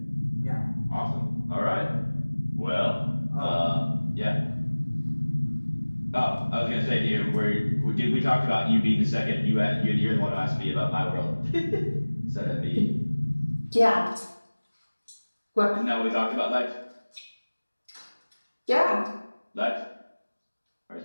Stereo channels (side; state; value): both; inverted; correlation -1.00